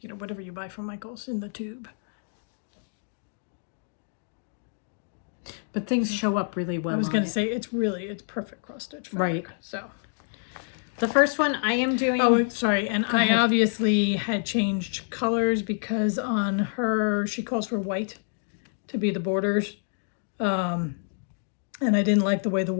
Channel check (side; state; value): right; silent; digital silence